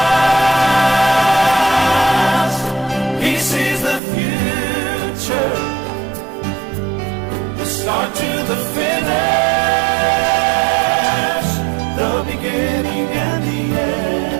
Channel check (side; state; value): left; drops out; at 4.0 s